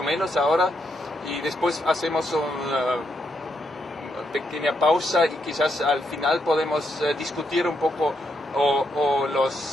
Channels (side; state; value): both; normal; correlation 0.79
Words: menos ahora, y después hacemos una pequeña pausa y quizás al final podemos discutir un poco